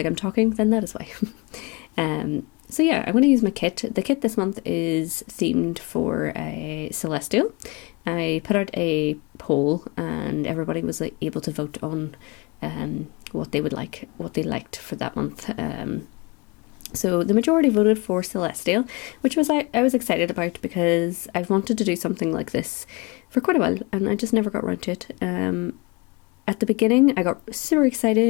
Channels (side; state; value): right; quieter; 27.5 dB